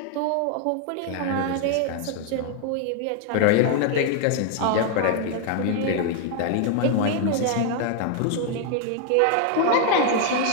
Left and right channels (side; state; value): both; different; correlation 0.00